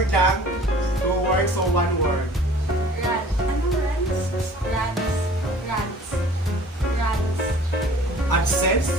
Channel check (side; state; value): both; normal; correlation 0.49